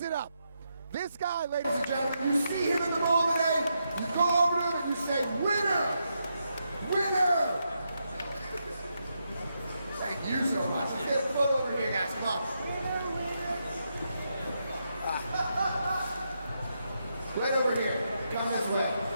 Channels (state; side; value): inverted; both; correlation -0.83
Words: it up. This guy, ladies and gentlemen, you see him in the mall today, you go over to him and you say, winner! Winner! Thank you so much. Let's get a photo over here, guys. Come on. Right over here. Come this way.